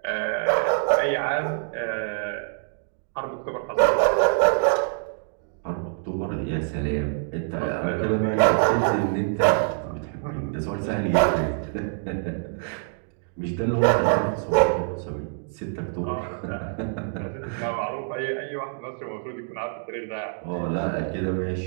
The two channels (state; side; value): silent; left; 61 dB below the other